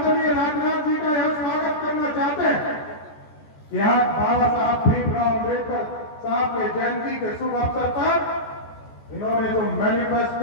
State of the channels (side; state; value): right; late; 14 ms